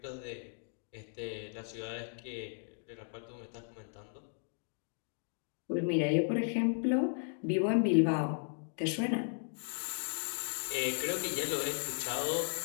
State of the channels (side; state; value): right; silent; digital silence